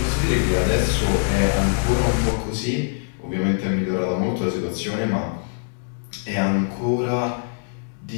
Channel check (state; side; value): silent; right; digital silence